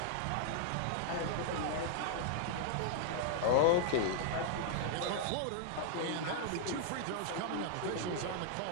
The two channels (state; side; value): different; both; correlation -0.01